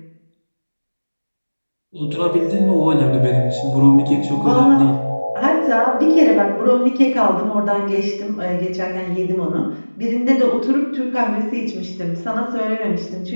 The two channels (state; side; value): inverted; both; correlation -1.00